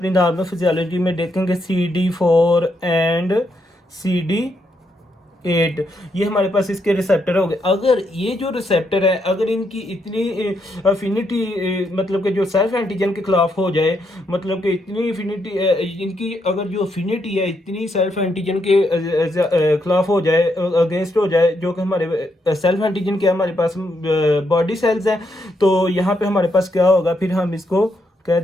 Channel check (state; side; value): normal; both; correlation 0.78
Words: नॉर्मल फिजियोलॉजी में देखेंगे CD4 एंड CD8। ये हमारे पास इसके रिसेप्टर हो गए। अगर ये जो रिसेप्टर है, अगर इनकी इतनी अफिनिटी, मतलब कि जो सेल्फ एंटीजन के खिलाफ हो जाए, मतलब कि इतनी अफिनिटी इनकी, अगर जो अफिनिटी है इतनी सेल्फ एंटीजन के खिलाफ हो जाए, अगेंस्ट हो जाए, जो कि हमारे सेल्फ एंटीजन के हमारे पास बॉडी सेल्स हैं, तो यहाँ पे हमारे पास क्या होगा, फिर हम इसको कह